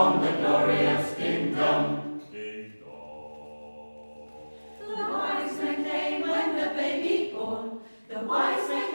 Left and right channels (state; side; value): inverted; both; correlation -1.00